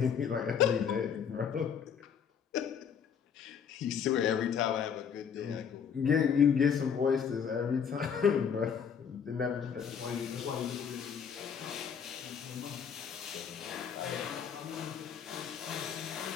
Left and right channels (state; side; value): quieter; right; 7.4 dB